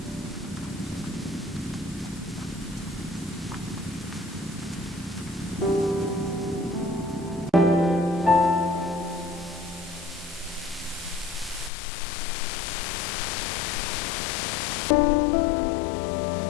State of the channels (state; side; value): drops out; right; at 11.7 s